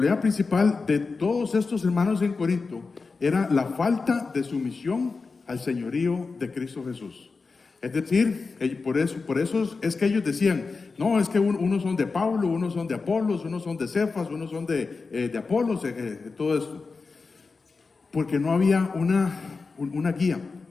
principal de todos estos hermanos en Corinto era la falta de sumisión al señorío de Cristo Jesús. Es decir, por eso es que ellos decían: no, es que unos son de Pablo, unos son de Apolos, unos son de Cefas, unos son de Apolos, todo esto. Porque no había una guía,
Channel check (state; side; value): quieter; right; 4.3 dB